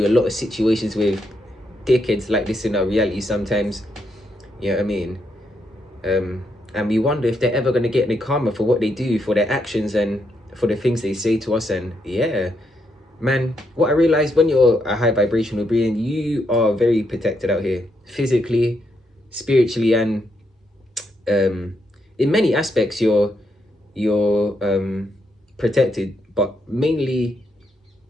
a lot of situations with dickheads like this in our reality sometimes. You know what I mean? And we wonder if they're ever going to get any karma for what they do, for their actions and for the things they say to us. And yeah, man, what I realized, when you're a high vibrational being, you are very protected out here, physically, spiritually, and in many aspects you're protected, but mainly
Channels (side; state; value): both; normal; correlation 0.79